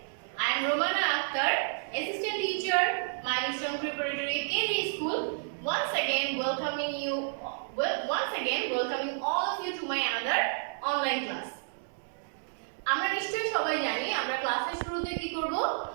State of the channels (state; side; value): silent; left; digital silence